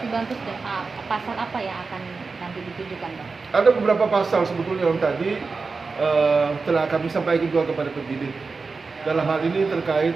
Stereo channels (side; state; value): left; quieter; 4.3 dB